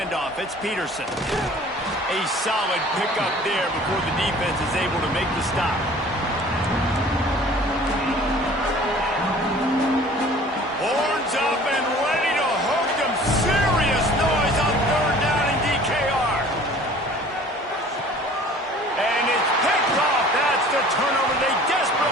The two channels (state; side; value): normal; both; correlation 0.48